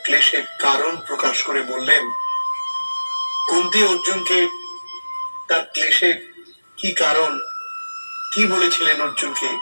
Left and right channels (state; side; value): inverted; both; correlation -1.00